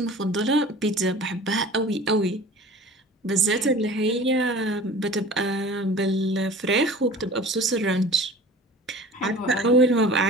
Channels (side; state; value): both; normal; correlation 0.41